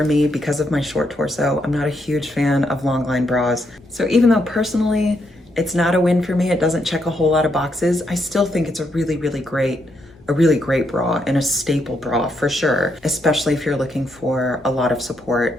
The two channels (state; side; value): normal; both; correlation 0.78